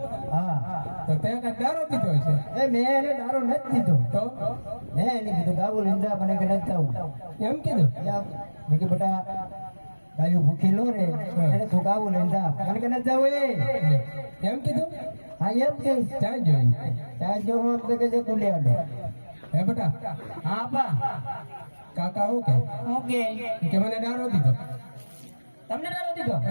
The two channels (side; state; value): both; inverted; correlation -1.00